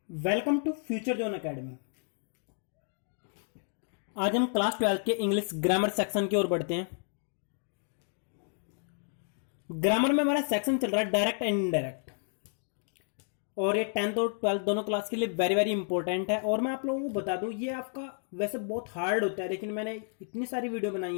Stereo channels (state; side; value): silent; right; 57 dB below the other